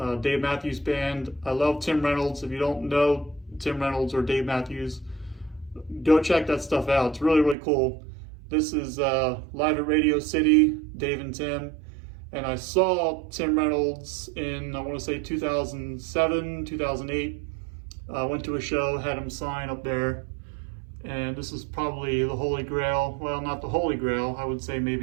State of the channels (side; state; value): left; drops out; at 7.6 s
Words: Dave Matthews Band. I love Tim Reynolds. If you don't know Tim Reynolds or Dave Matthews, go check that stuff out. It's really, really cool. This is live at Radio City, Dave and Tim. And I saw Tim Reynolds in, I want to say 2007, 2008. Went to a show, had him sign up there. And this is probably the Holy Grail. Well, not the Holy Grail. I would say